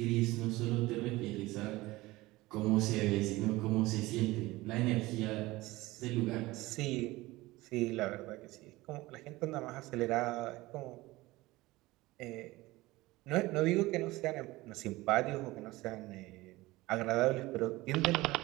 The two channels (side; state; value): left; quieter; 19.6 dB